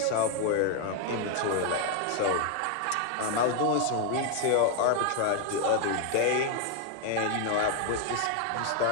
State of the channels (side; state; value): both; different; correlation 0.01